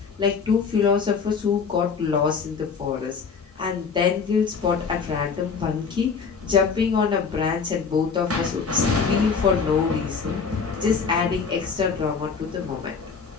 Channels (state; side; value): quieter; right; 5.7 dB